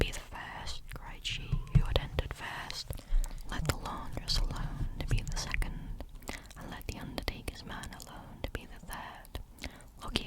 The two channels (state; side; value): identical; both; correlation 1.00